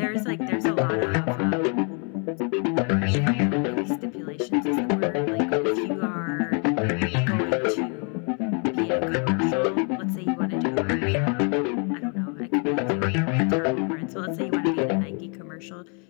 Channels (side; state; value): right; quieter; 38.0 dB